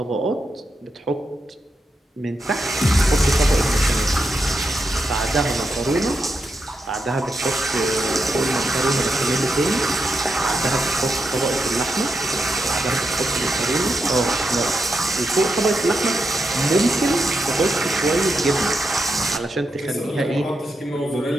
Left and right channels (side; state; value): both; normal; correlation 0.85